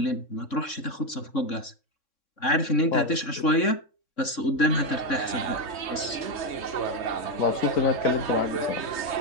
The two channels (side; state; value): right; late; 3.6 ms